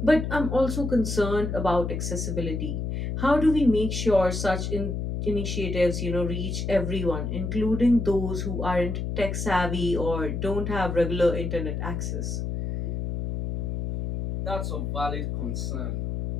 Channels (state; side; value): noise; left; hum, 3 dB below the sound